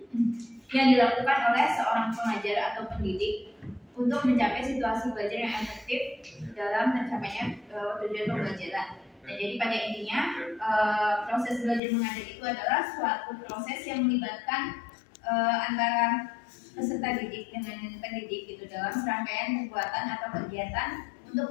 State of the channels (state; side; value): drops out; right; at 11.8 s